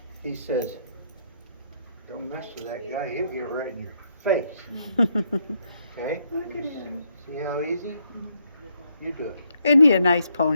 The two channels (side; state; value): both; inverted; correlation -0.75